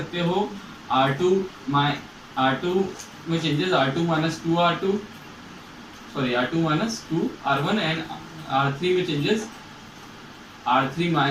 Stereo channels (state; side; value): identical; both; correlation 1.00